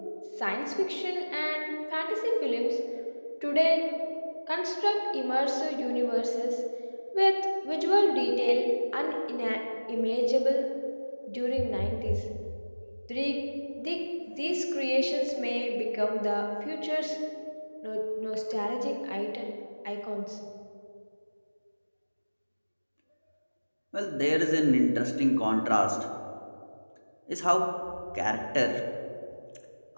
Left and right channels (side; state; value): both; inverted; correlation -1.00